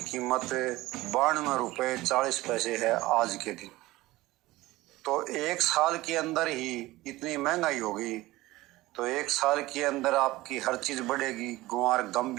कीमत 92 रुपये 40 पैसे है आज के दिन। तो एक साल के अंदर ही इतनी महंगाई होगी, तो एक साल के अंदर आपकी हर चीज़ बढ़ेगी। गुआर गम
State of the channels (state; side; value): quieter; left; 18.4 dB